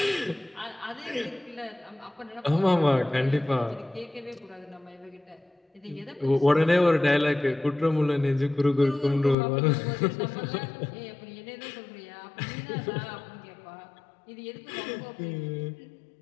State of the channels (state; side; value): drops out; right; at 9.3 s